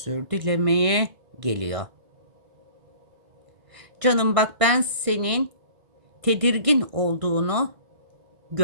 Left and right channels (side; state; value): left; late; 1.6 ms